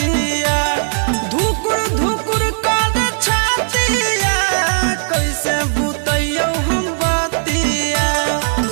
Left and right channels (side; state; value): left; silent; 59 dB below the other